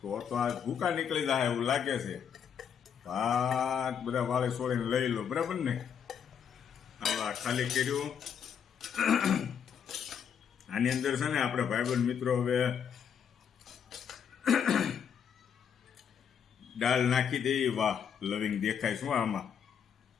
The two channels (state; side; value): quieter; right; 7.8 dB